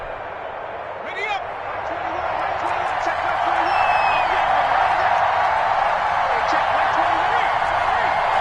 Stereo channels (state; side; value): identical; both; correlation 1.00